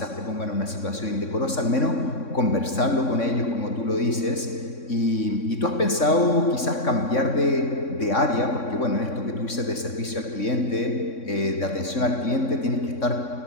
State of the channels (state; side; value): late; right; 3.6 ms